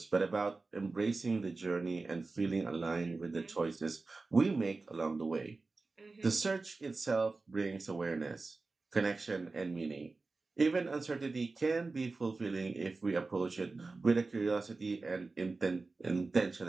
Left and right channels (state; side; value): quieter; left; 3.7 dB